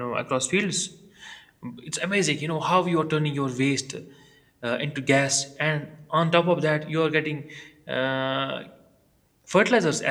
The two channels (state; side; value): identical; both; correlation 1.00